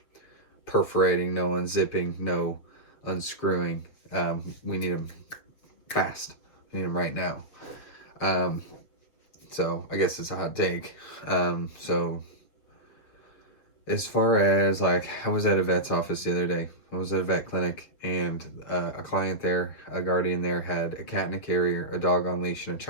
perforating, no unzipping, no unscrewing. We need them fast. We need them right now. Um, so I guess it's a hot take. So as far as like, I was at a vet's office the other day. I was at a vet clinic, and a client there, a guardian there, had a cat in a carrier, a dog on leash, and a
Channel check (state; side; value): late; right; 7.3 ms